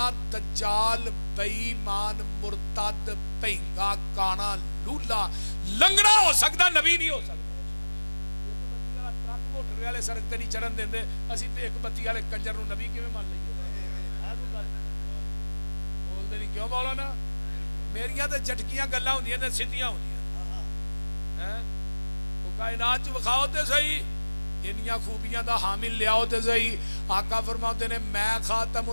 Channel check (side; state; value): both; inverted; correlation -1.00